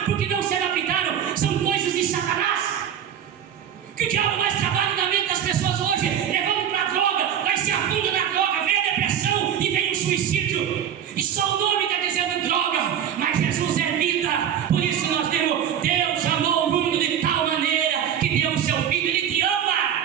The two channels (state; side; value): quieter; left; 9.3 dB